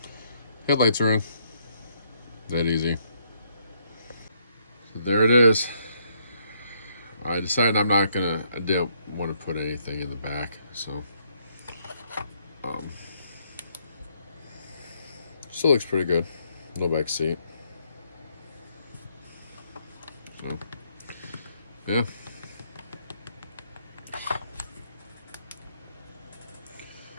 Headlights are in. That easy. So there it is. I decided I didn't want to put anything in the back, so still looks pretty good. No back seat. So yeah.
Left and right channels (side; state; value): both; inverted; correlation -0.71